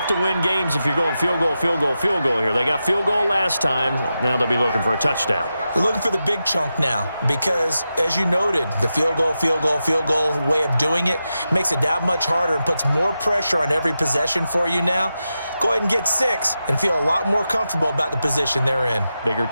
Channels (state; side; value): inverted; both; correlation -0.90